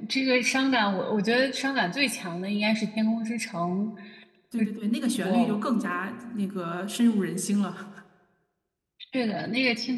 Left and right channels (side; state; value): both; identical; correlation 1.00